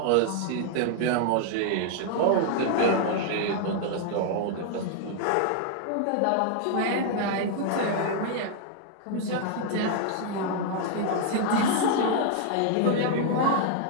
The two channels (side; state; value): both; different; correlation 0.00